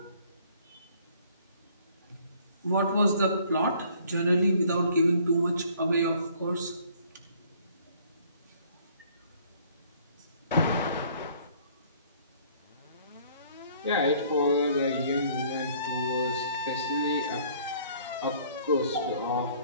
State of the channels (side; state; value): both; inverted; correlation -0.58